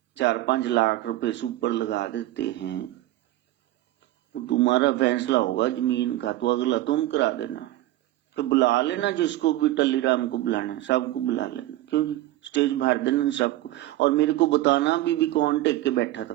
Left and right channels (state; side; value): quieter; left; 15.7 dB